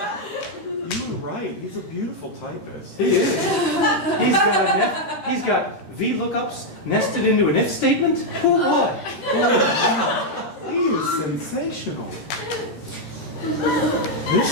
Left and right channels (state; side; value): late; right; 13 ms